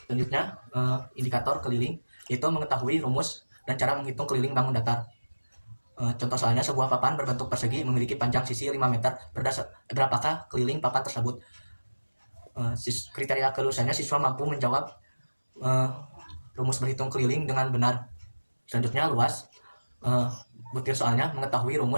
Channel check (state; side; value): inverted; both; correlation -1.00